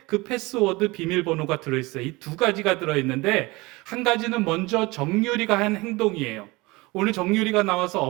그 패스워드 비밀번호가 들어있어요. 이 두 가지가 들어있는데, 한 가지는 먼저 정유리가 한 행동이에요. 오늘 정유리가 나와서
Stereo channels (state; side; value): quieter; left; 23.1 dB